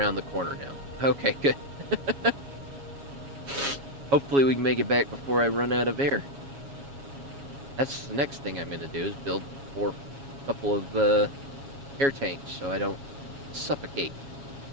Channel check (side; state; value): left; late; 7.2 ms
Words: the corner now. Okay, good. Hopefully we can make it back before I run out of air. That's the next thing I'm gonna do is build a couple of air tanks so I don't suffocate.